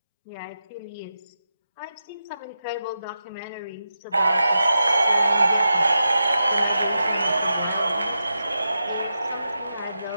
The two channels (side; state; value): both; inverted; correlation -0.88